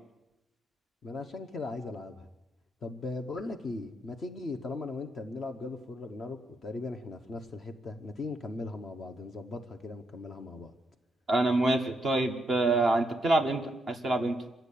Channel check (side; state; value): both; normal; correlation 0.78